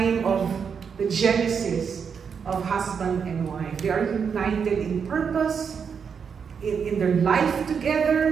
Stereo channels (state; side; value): quieter; left; 6.5 dB